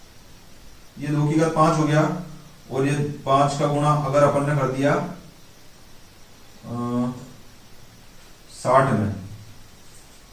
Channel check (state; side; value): identical; both; correlation 1.00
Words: ये 2 की घात 5 हो गया, और ये 5 का गुणा अगर अपन ने कर दिया 60 में,